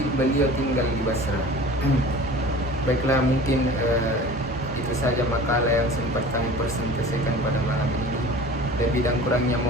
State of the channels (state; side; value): normal; both; correlation 0.40